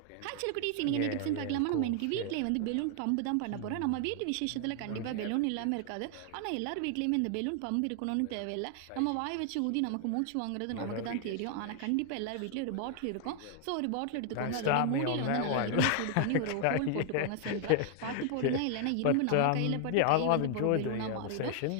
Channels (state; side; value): different; both; correlation 0.00